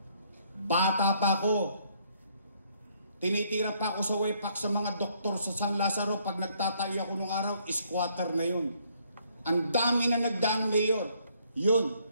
Bata pa ako. Tinitira pa ako sa WEPAC sa mga doktor sa San Lazaro. Pag nagtatayo ako nung araw, squatter na yun. Ang dami na nagdaan mayor. Yun.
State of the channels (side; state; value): both; inverted; correlation -0.67